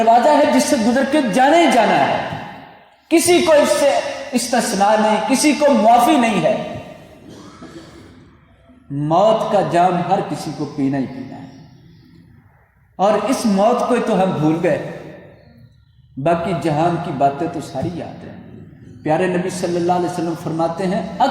ہے جس سے گزر کے جانا ہی جانا ہے، کسی کو اس سے استثناء نہیں، کسی کو معافی نہیں ہے۔ موت کا جام ہر کسی کو پینا ہی پینا ہے، اور اس موت کو تو ہم بھول گئے، باقی جہان کی باتیں تو ساری یاد ہیں۔ پیارے نبی صلی اللہ علیہ وسلم فرماتے ہیں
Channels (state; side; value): identical; both; correlation 1.00